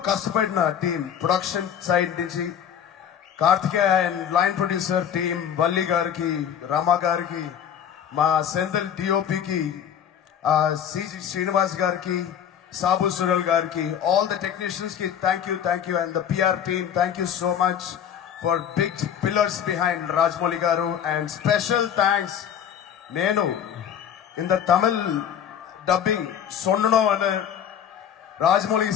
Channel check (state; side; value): quieter; right; 8.9 dB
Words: కష్టపడిన టీం, ప్రొడక్షన్ సైడ్ నుంచి Karthikeya and line producer team, Valli గారికి, రామా గారికి, మా సెంథిల్ డిఓపికి, సిజి శ్రీనివాస్ గారికి, Sabu Sural Garki, all the technicians ki thank you, and the PR team thank you so much for big pillars behind Rajmouli Garu. And special thanks nenu in the Tamil dubbing sonno anu Rajmouli